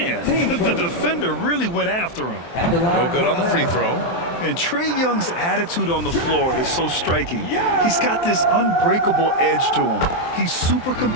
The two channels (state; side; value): late; right; 23 ms